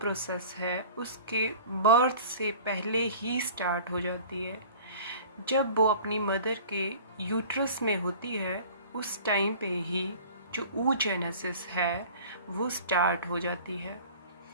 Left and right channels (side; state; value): both; inverted; correlation -0.44